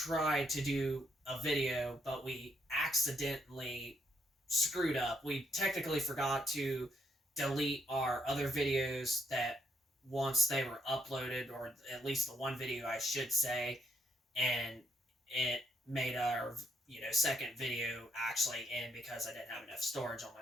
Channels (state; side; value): normal; both; correlation 0.74